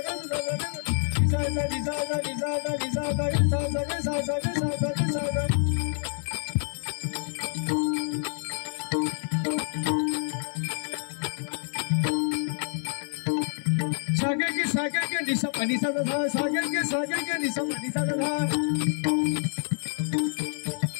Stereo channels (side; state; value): right; silent; digital silence